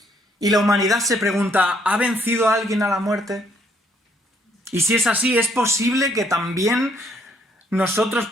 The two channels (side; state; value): both; normal; correlation 0.68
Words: Y la humanidad se pregunta, ¿ha vencido a alguien a la muerte? Y si es así, ¿es posible que también nosotros